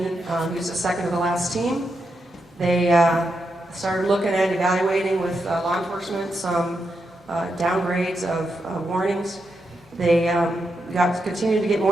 He was the second to the last team. They started looking at evaluating with law enforcement some downgrades of warnings. They continued to get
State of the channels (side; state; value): both; normal; correlation 0.84